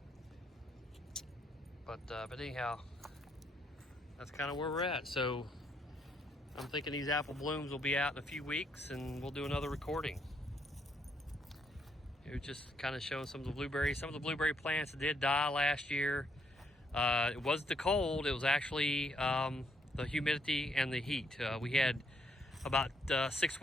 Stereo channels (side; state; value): both; normal; correlation 0.73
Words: But anyhow, that's kind of where we're at. So I'm thinking these apple blooms will be out in a few weeks, and we'll do another recording. It was just kind of showing some of the blueberries. Some of the blueberry plants did die last year. It wasn't the cold, it was actually the humidity and the heat. We had about 6